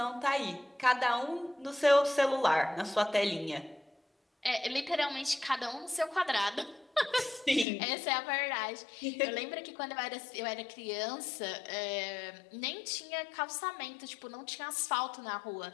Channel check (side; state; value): right; drops out; at 7.7 s